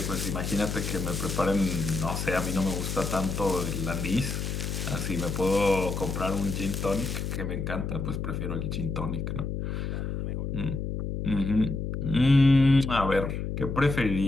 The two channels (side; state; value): left; noise; hum, 3 dB below the sound